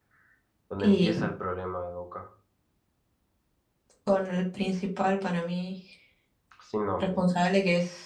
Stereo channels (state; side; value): identical; both; correlation 1.00